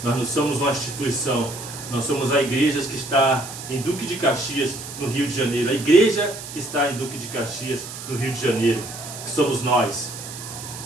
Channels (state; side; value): noise; right; hiss, 11 dB below the sound